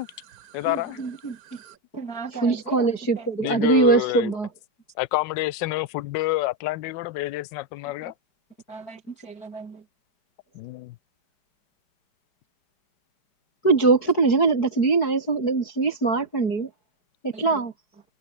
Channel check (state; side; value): late; right; 4.7 ms